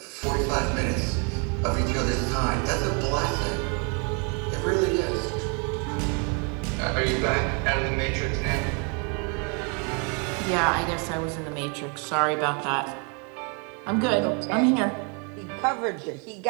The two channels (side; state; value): left; quieter; 35.9 dB